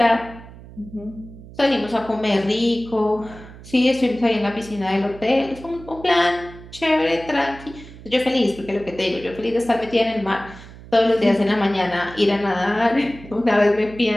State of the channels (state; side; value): noise; right; hum, 18 dB below the sound